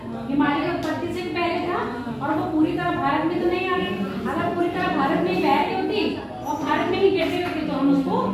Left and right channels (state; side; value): identical; both; correlation 1.00